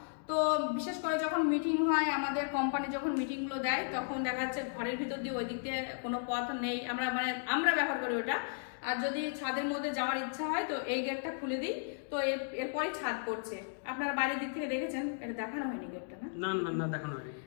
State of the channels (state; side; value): silent; right; digital silence